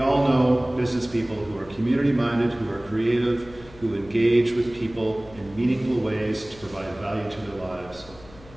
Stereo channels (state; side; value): noise; left; hum, 21 dB below the sound